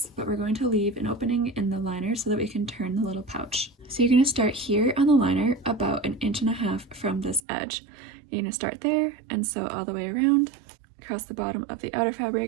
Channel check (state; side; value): drops out; left; at 7.4 s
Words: but we're going to leave an opening in the liner so that we can turn the little pouch. So you're going to start here on the liner about 1.5 inches from this edge. You're going to start there and sew all the way around, across the bottom of the outer